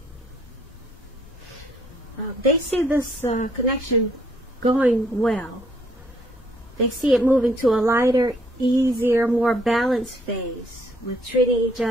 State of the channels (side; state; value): left; noise; rumble, 22 dB below the sound